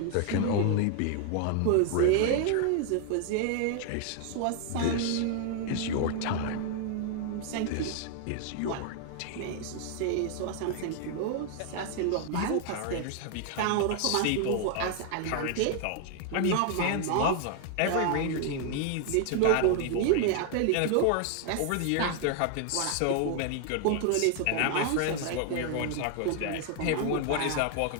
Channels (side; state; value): both; different; correlation 0.00